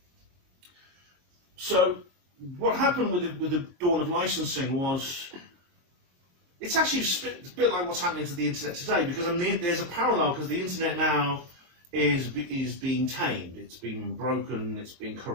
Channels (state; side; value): late; left; 22 ms